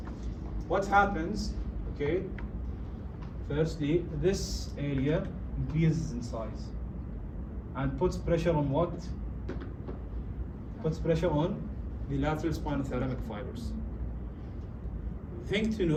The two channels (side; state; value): both; identical; correlation 1.00